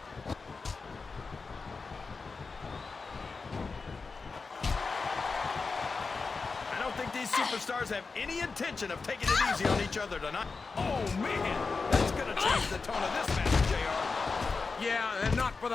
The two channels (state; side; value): quieter; right; 4.4 dB